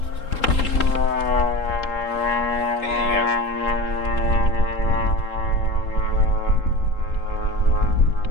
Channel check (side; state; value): right; late; 3.8 ms